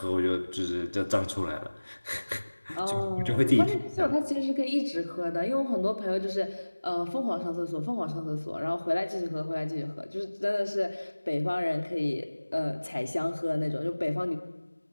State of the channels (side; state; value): both; inverted; correlation -1.00